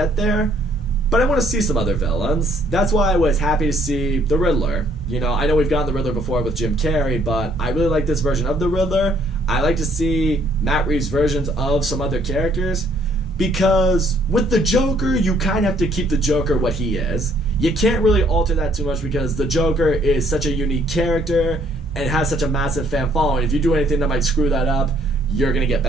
there, but I want to see some other villains. That's why I was happy to see the Riddler. I know we've gotten the Riddler before with Jim Carrey, but I really like this version of the Riddler. I like to see Matt Reeves' versions of some other characters, because with the Joker, you kind of have to keep the Joker what he is. You can't really alter that too much because the Joker is such a unique character, and has such a massive fan following. If you do anything that might screw that up, you're gonna get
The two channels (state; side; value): normal; both; correlation 0.64